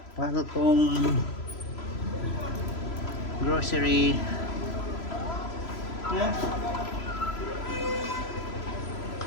Falcon Grocery. Yeah.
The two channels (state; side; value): late; right; 3.0 ms